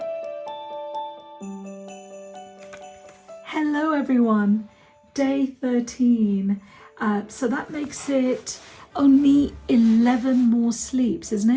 everyone, day 13. So that makes it only 11 more sleeps, isn't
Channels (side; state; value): both; identical; correlation 1.00